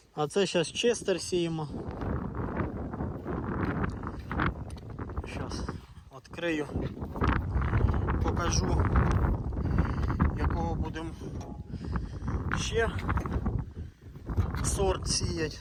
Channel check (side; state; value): both; identical; correlation 1.00